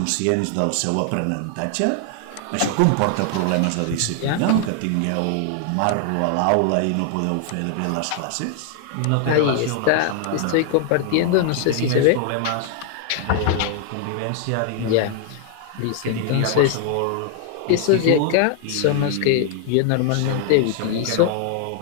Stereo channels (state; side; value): different; both; correlation 0.00